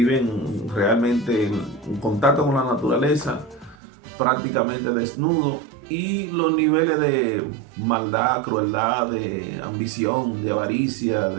realmente en contacto con la naturaleza, prácticamente desnudo, y los niveles de maldad, crueldad, de ambición, de avaricia,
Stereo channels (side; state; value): left; drops out; at 3.8 s